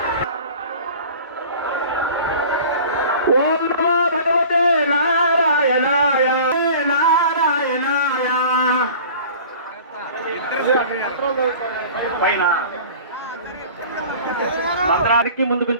ఓం నమో భగవతే నారాయణాయ నారాయణాయ. పైన మంత్రానికి ముందు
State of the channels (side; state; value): both; inverted; correlation -0.42